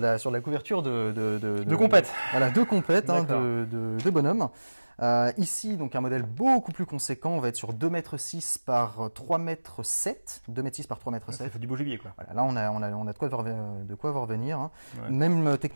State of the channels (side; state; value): both; inverted; correlation -1.00